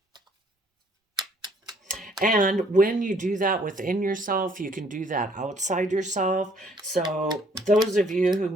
And when you do that within yourself, you can do that outside yourself. So, those of you who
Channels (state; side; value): normal; both; correlation 0.62